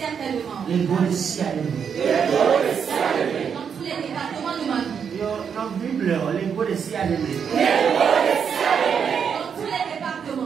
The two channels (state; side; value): quieter; left; 7.1 dB